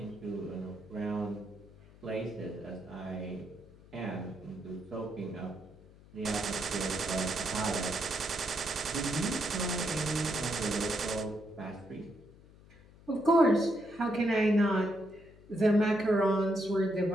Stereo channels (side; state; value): left; noise; hum, 23 dB below the sound